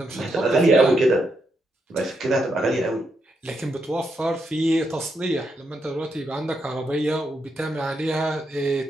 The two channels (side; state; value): both; normal; correlation 0.81